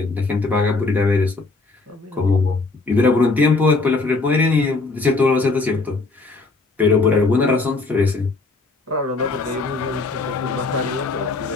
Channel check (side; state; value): right; quieter; 3.7 dB